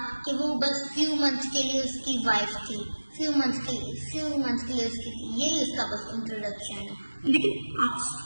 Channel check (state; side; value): inverted; both; correlation -1.00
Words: کہ وہ بس فیو منتھس کے لیے اس کی وائف تھی، فیو منتھس کے لیے اس کی تھی، یہی اس کا بس انٹروڈکشن ہے. لیکن آپ